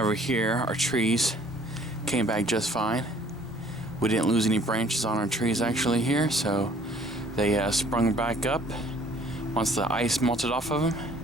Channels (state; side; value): normal; both; correlation 0.56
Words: here, our trees came back just fine. We didn't lose any branches on our trees actually here, so they sprung back up once the ice melted off of